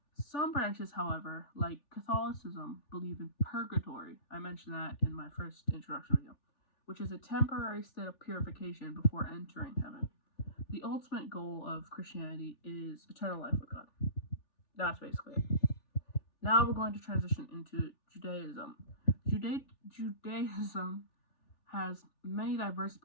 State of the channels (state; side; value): late; right; 3.4 ms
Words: some branches, however, like Catholicism, believe in purgatory. I mentioned that in my first introduction video, which is a temporary state of purification before entering heaven. The ultimate goal of Christianity is eternal life with God. That's basically it. Now we're going to transition into Judaism. Judaism has many diverse